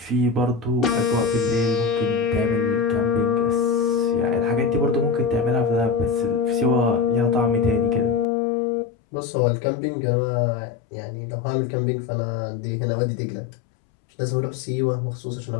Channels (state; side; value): drops out; right; at 8.2 s